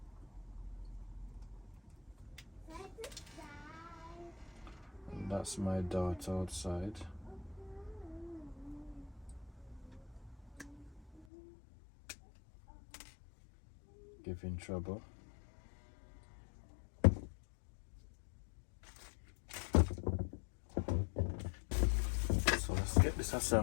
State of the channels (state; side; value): drops out; right; at 11.2 s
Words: And that's my dart outside. Giving trouble. So let's get this